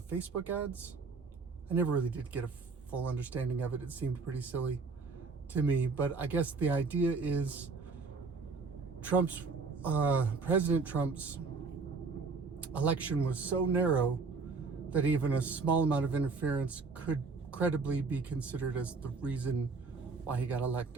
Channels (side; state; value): left; quieter; 4.4 dB